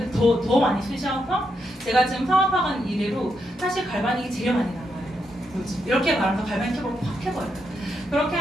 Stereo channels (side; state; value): both; normal; correlation 0.81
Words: 더 많이 쓰셔서 제가 지금 사업하는 이래로 사실 갈바닉이 제일 많이 나와요. 이렇게 말하면서 갈바닉 캡을 확 해버려요. 그렇게